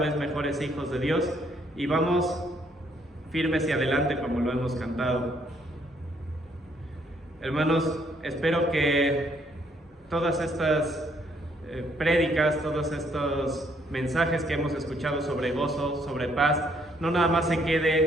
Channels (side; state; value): both; normal; correlation 0.69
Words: mejores hijos de Dios y vamos firmes y adelante como lo hemos cantado. Hermanos, espero que todas estas prédicas, todos estos mensajes que hemos escuchado sobre gozo, sobre paz, no nada más se